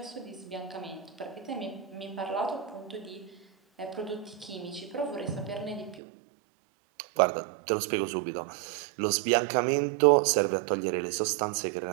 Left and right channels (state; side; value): drops out; left; at 6.0 s